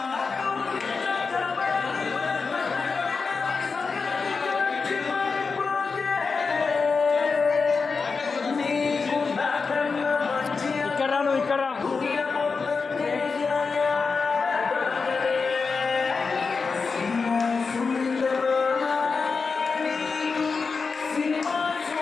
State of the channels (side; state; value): right; quieter; 4.8 dB